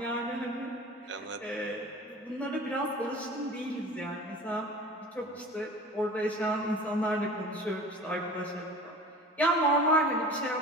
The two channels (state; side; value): normal; both; correlation 0.40